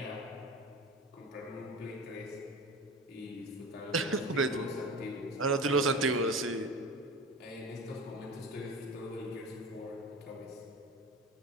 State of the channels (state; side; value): normal; both; correlation 0.32